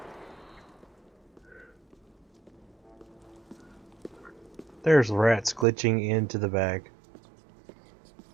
There's rats glitching into the bag.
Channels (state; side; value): drops out; left; at 5.7 s